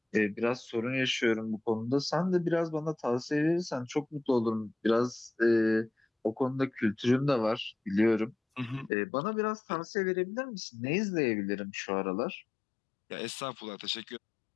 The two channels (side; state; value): right; drops out; at 8.9 s